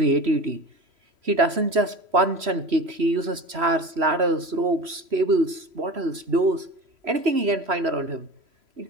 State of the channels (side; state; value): left; late; 3.0 ms